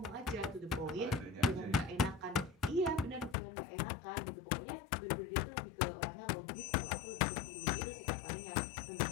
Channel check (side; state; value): right; drops out; at 3.4 s